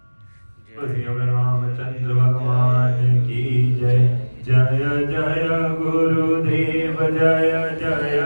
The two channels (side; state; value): both; inverted; correlation -1.00